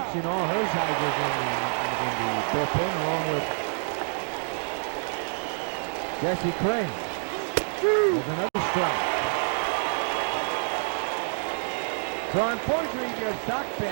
All Hershiser's in the bullpen, along with Jesse Crane. There's another strike. So unfortunately, if you're a Sox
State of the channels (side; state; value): left; silent; digital silence